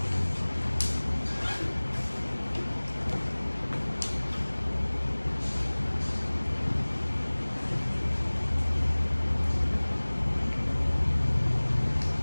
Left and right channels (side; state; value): both; inverted; correlation -1.00